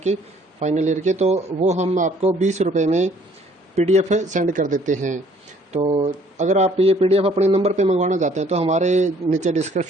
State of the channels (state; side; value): normal; both; correlation 0.59